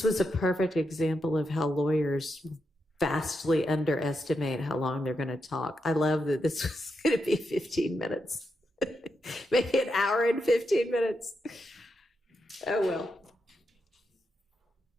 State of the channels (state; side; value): normal; both; correlation 0.85